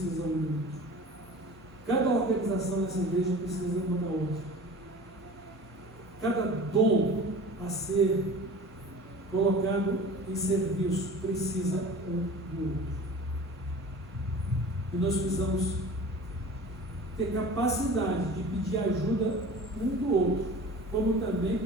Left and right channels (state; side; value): normal; both; correlation 0.40